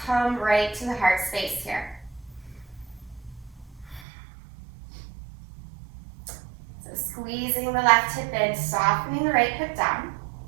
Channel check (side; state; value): left; drops out; at 4.0 s